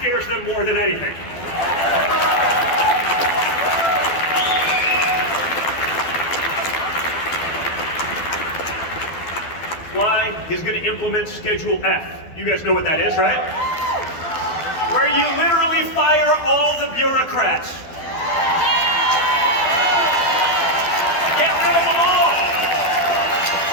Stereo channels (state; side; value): late; right; 12 ms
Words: them more than anything. Why? He's going to implement Schedule F. You guys know what that is, right? Where you literally fire all the bureaucrats. Get rid of them all.